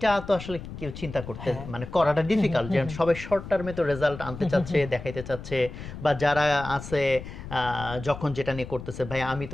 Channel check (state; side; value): noise; left; rumble, 11 dB below the sound